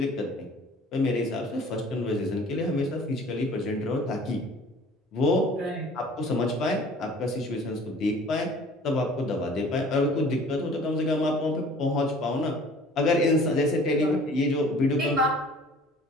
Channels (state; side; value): normal; both; correlation 0.49